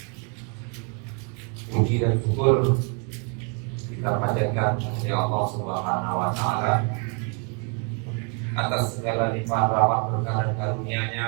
Puji dan syukur kita panjatkan kepada Allah Subhanahu wa taala atas segala limpahan rahmat berkah dan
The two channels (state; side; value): quieter; left; 36.2 dB